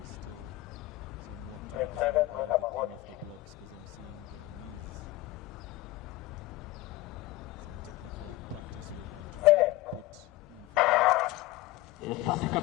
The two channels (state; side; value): quieter; right; 17.5 dB